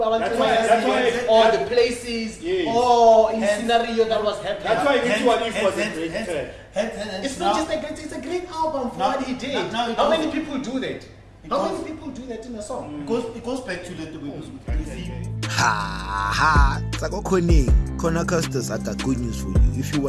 why- or the places Yes. or in scenario that was happening. That's why this one if was a great track. It's not just a great, it's a great album for what he did. How many people do that? How many people do that in a song? It goes back to the Ha! Kona Custos, I got good news for you. If you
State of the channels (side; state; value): both; identical; correlation 1.00